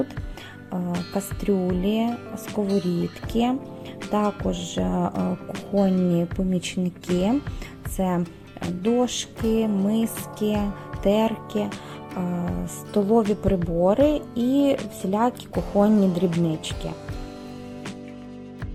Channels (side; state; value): both; identical; correlation 1.00